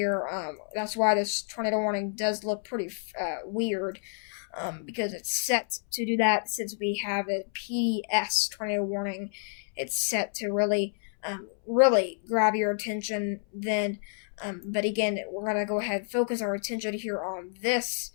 That's why this tornado warning does look pretty weird. Because it's set to do that since we have a PDS tornado warning. It's set to really really grab your attention then. But again, we're going to go ahead and focus our attention here on this.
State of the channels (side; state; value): right; silent; 58 dB below the other